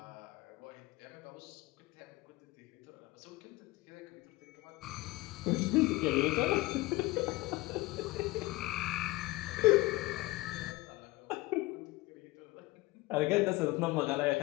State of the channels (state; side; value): quieter; right; 20.4 dB